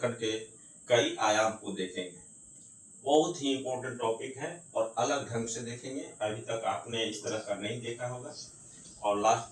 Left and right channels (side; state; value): both; identical; correlation 1.00